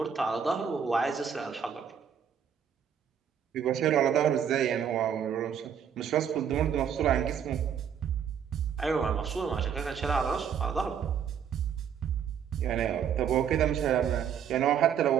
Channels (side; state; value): left; quieter; 8.0 dB